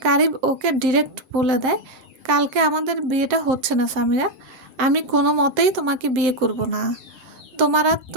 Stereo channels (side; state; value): left; late; 7.9 ms